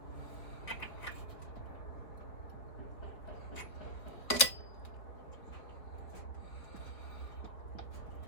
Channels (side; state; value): right; late; 4.1 ms